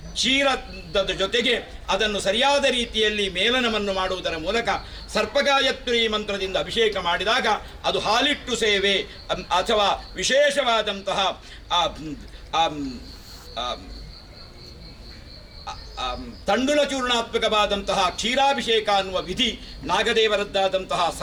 ಕ್ಷೀರದ ಜೊತೆಗೆ ಅದನ್ನು ಸರಿಯಾದ ರೀತಿಯಲ್ಲಿ ಮೇಲನವನ್ನು ಮಾಡುವುದರ ಮೂಲಕ ಸರ್ಪಗಾಯತ್ರಿ ಮಂತ್ರದಿಂದ ಅಭಿಷೇಕ ಮಾಡಿದಾಗ ಅದು ಹಾಲಿಟ್ಟು ಸೇವೆ ಅಥವಾ ವಿಶೇಷವಾದಂತಹ ತಂಡುಲ ಚೂರ್ಣಾತ್ಮಕವಾದಂತಹ ಕ್ಷೀರಾಭಿಷೇಕ ಅನ್ನುವ ವಿಧಿ ನಾಗದೇವರದ್ದಾದಂತಹ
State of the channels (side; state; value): both; identical; correlation 1.00